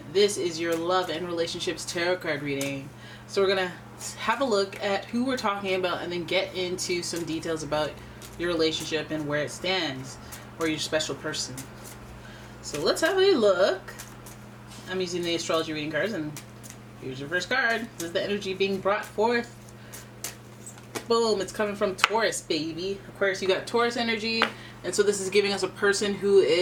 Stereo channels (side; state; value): both; identical; correlation 1.00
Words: this is your love and relationships tarot card reading. So we're gonna have a look at who we're talking about and then get into some details about your relationship and where it stands, or your special person. So let's have a look. I'm using the astrology reading cards, and here's your first card. This is the energy being brought forth. Boom, it's coming from Taurus, baby. Aquarius, you got Taurus energy. And so this is giving us a person who